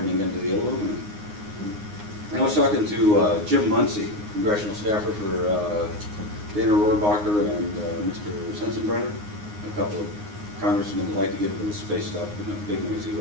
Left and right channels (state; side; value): late; left; 9.6 ms